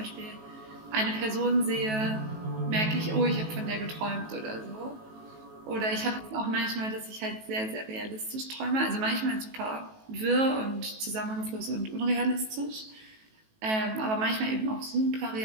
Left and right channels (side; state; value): left; late; 18 ms